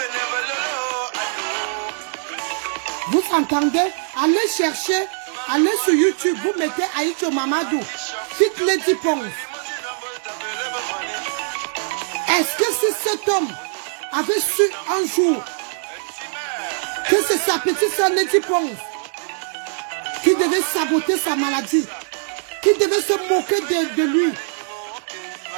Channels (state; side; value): silent; left; digital silence